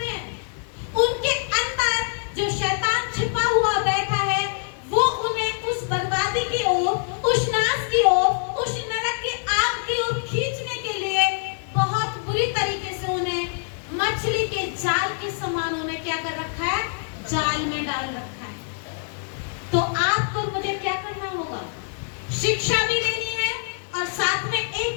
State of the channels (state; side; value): silent; right; digital silence